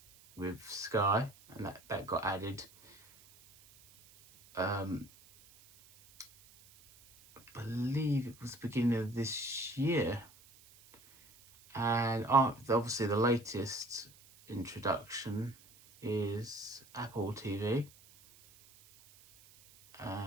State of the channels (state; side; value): noise; right; hiss, 25 dB below the sound